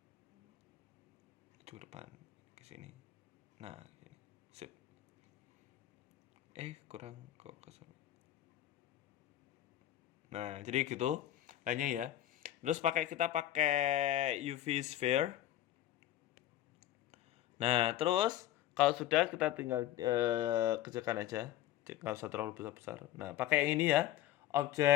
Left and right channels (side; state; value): right; quieter; 13.2 dB